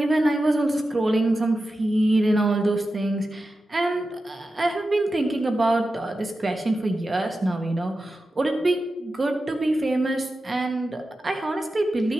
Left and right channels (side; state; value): both; normal; correlation 0.92